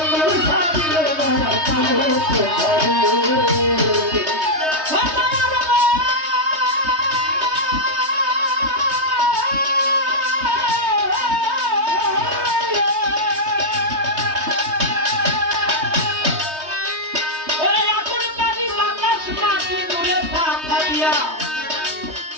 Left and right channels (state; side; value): late; left; 3.2 ms